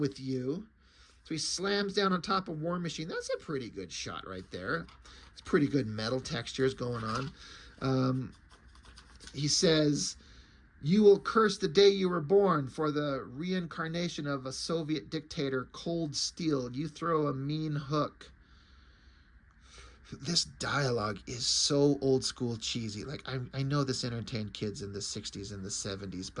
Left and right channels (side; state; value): both; identical; correlation 1.00